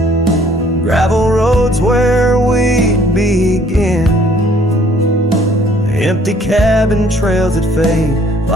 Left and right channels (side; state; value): both; normal; correlation 0.60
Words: gravel roads where we begin, empty cabin trails that fade